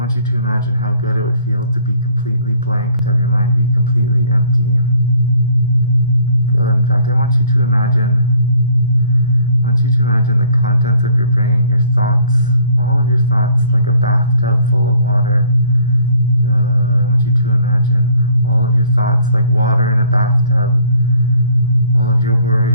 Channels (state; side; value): inverted; both; correlation -0.57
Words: to imagine how good it would feel to be completely blank, to have your mind be completely empty. Good. In fact, I want you to imagine the contents of your brain, your thoughts, all of your thoughts, like a bathtub full of water. Good. I want you to imagine all of your thoughts like water in a bathtub. All of your